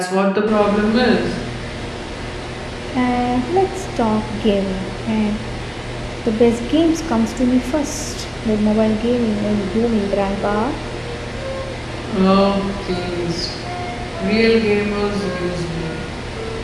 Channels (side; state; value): both; identical; correlation 1.00